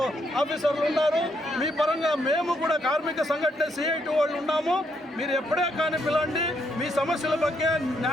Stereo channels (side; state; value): both; normal; correlation 0.75